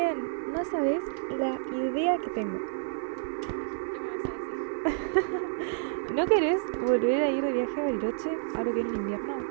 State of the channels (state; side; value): silent; left; digital silence